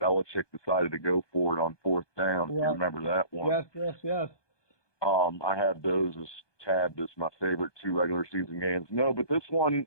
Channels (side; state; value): right; late; 1.2 ms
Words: Belichick decided to go for it on 4th down. Yeah. You remember that one? Yes. I have those as tabbed as my favorite 2 regular season games. No, but this one,